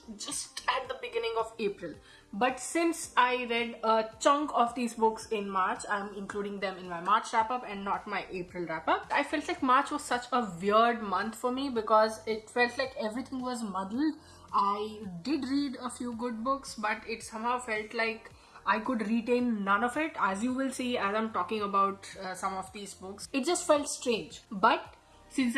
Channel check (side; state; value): both; identical; correlation 1.00